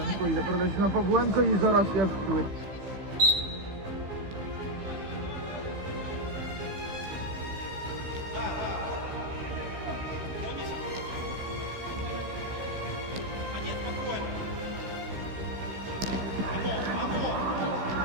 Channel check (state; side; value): late; left; 15 ms